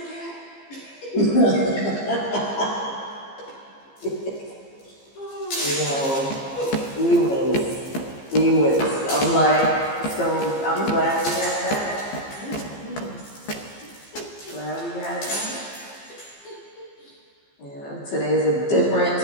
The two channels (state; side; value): late; right; 15 ms